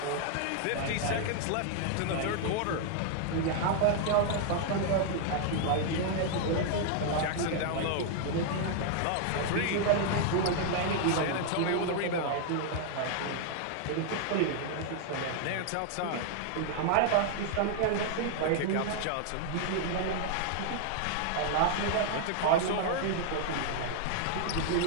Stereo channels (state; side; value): different; both; correlation 0.00